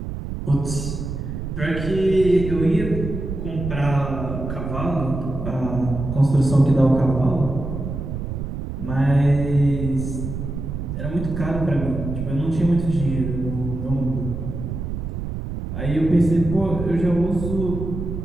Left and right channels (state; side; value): noise; right; rumble, 5 dB below the sound